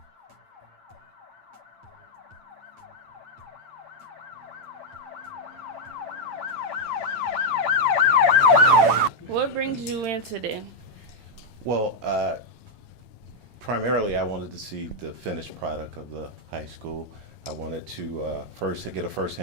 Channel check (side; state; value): left; late; 8.9 ms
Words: What brings you in today? Well, primarily I wanted to see the finished product of the high school. I wanted to first get a